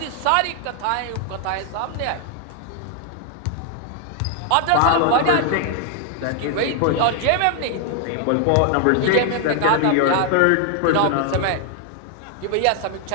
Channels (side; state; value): both; different; correlation 0.00